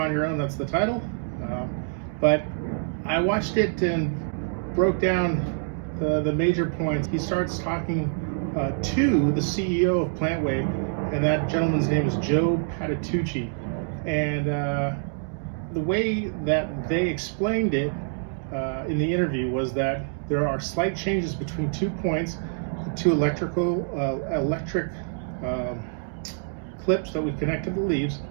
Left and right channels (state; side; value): silent; left; digital silence